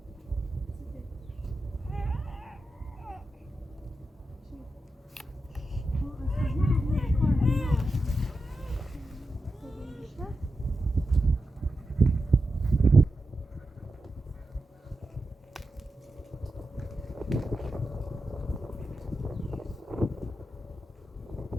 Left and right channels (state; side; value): normal; both; correlation 0.89